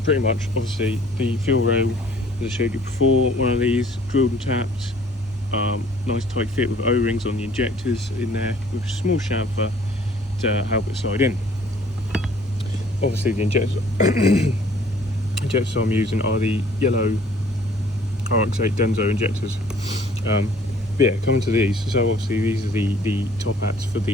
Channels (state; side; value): normal; both; correlation 0.56